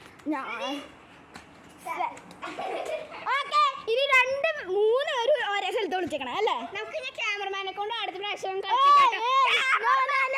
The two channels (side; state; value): both; identical; correlation 1.00